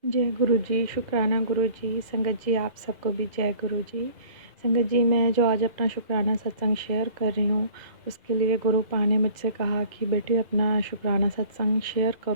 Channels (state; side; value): late; left; 2.0 ms